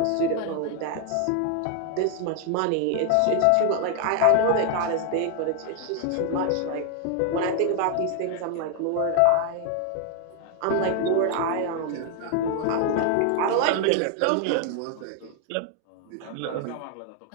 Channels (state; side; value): different; both; correlation 0.00